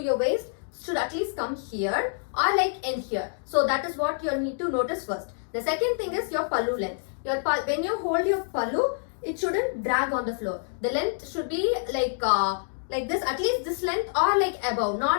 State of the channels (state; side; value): silent; right; digital silence